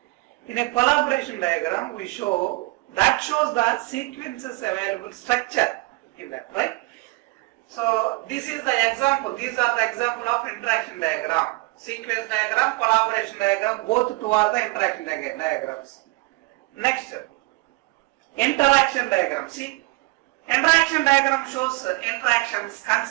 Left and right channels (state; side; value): quieter; left; 23.8 dB